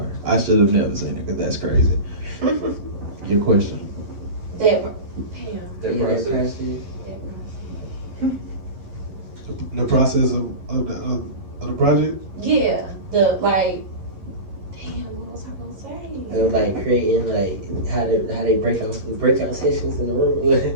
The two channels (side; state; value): left; late; 11 ms